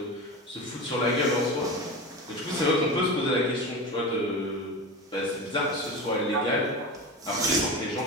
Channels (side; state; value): both; normal; correlation 0.26